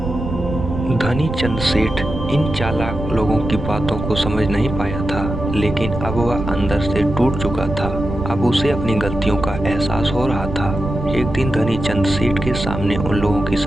धनी चंद सेठ इन चालाक लोगों की बातों को समझ नहीं पाया था, लेकिन अब वह अंदर से टूट चुका था। अब उसे अपनी गलतियों का एहसास हो रहा था। एक दिन धनी चंद सेठ के सामने उन लोगों की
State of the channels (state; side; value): noise; right; rumble, 6 dB below the sound